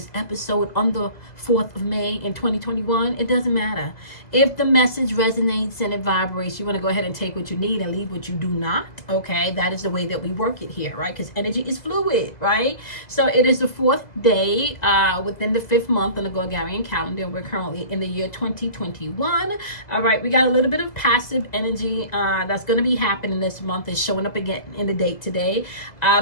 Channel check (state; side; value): late; right; 2.0 ms